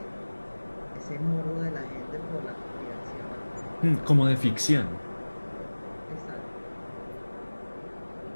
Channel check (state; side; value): inverted; both; correlation -1.00